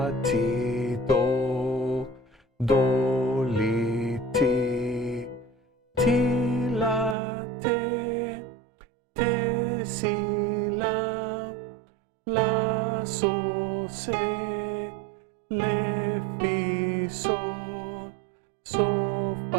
ti, do, do, li, ti, ti, la, te, te, si, la, sol, se, le, fi, sol, sol,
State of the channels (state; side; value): drops out; left; at 7.2 s